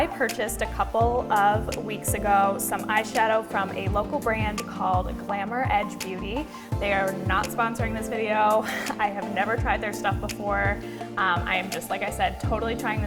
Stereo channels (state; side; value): identical; both; correlation 1.00